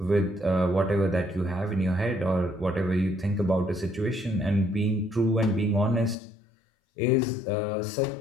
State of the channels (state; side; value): drops out; right; at 6.2 s